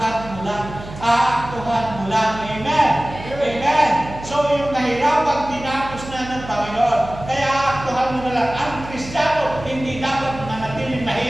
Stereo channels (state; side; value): noise; right; hum, 13 dB below the sound